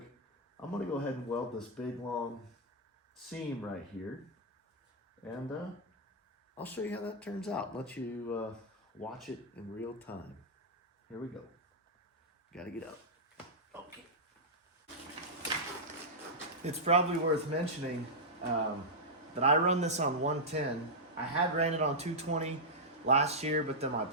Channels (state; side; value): normal; both; correlation -0.08